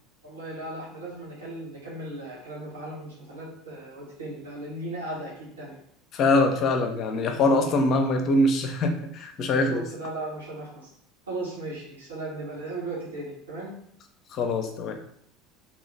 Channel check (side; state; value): both; normal; correlation 0.49